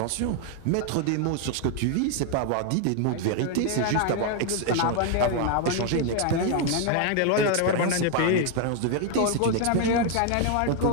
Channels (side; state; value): both; different; correlation 0.00